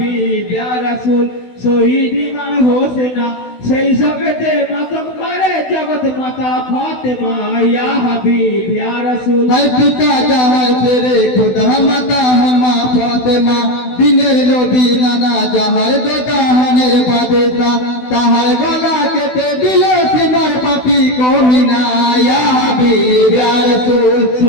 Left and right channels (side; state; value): right; late; 16 ms